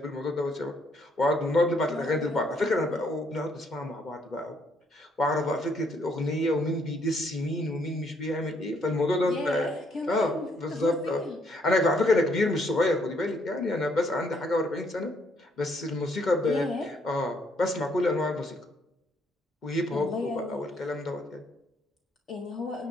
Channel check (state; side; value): normal; both; correlation 0.69